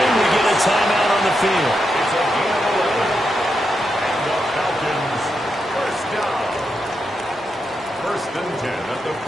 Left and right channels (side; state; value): both; normal; correlation 0.85